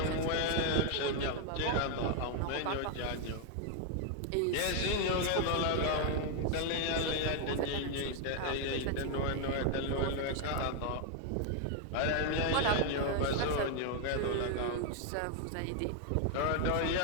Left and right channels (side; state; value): both; different; correlation 0.00